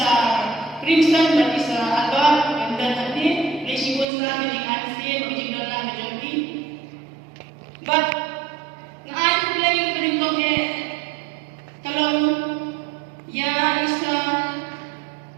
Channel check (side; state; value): left; drops out; at 4.0 s